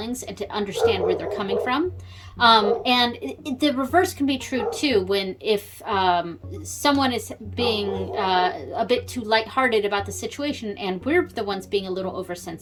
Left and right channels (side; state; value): both; identical; correlation 1.00